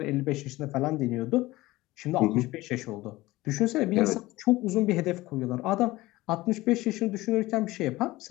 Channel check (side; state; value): right; quieter; 18.8 dB